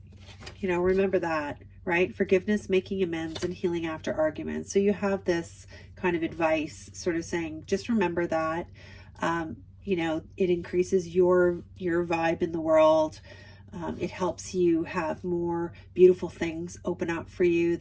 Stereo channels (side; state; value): both; identical; correlation 1.00